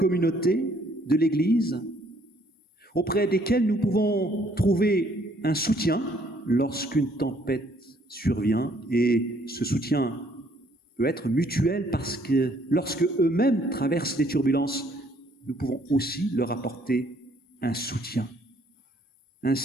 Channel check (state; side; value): normal; both; correlation 0.64